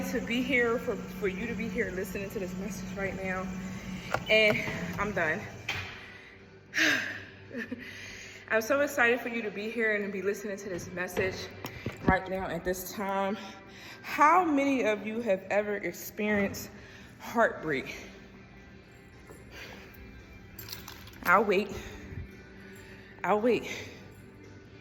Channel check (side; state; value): both; identical; correlation 1.00